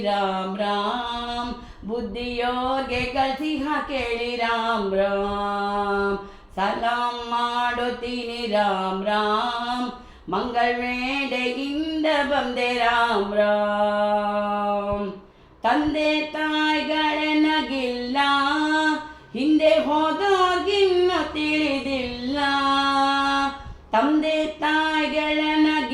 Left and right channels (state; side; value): identical; both; correlation 1.00